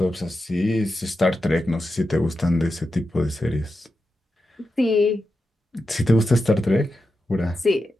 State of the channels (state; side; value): normal; both; correlation 0.89